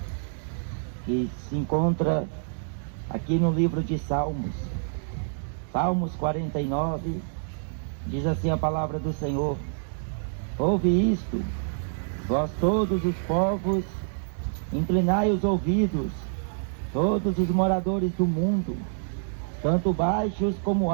que se encontra aqui no livro de Salmos. Salmos 49, diz assim a palavra do Senhor: ouve isto, vós todos os povos, inclinai os ouvidos, todos os moradores do mundo, tanto baixos como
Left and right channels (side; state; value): left; silent; digital silence